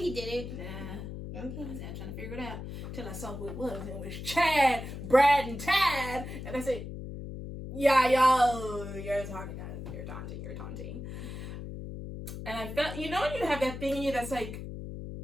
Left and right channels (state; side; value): noise; left; hum, 8 dB below the sound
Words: did it. Nah. Okay. I was trying to figure it out till I saw who it was. And it was Chad, Brad, and Tad. And I said, yeah, yo, you're talking, you're taunting. And I felt, you know when you have that thing in you that's like,